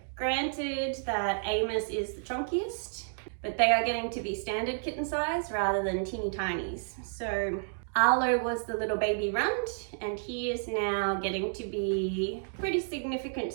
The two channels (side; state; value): left; silent; digital silence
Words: granted that Amos is the chunkiest, but they are getting to be standard kitten size rather than teeny tinies. So Arlo was the little baby runt, and he is now getting to be pretty significant